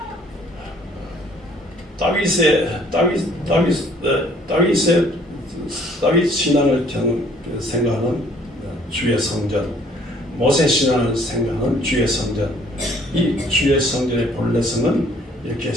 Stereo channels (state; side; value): normal; both; correlation 0.60